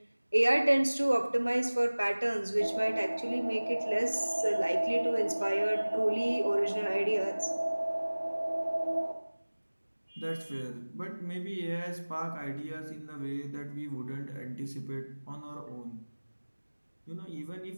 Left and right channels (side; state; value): both; inverted; correlation -1.00